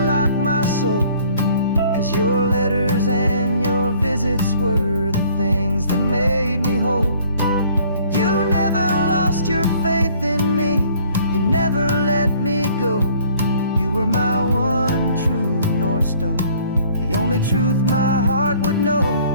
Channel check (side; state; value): both; inverted; correlation -0.56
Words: my soul, 'cause your letters and your visits were the things that made me whole. You never lost your faith in me, you never let me go. You were my one true North Star. only truth my heart would know.